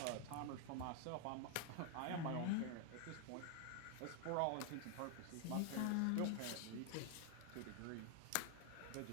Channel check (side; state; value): both; different; correlation 0.01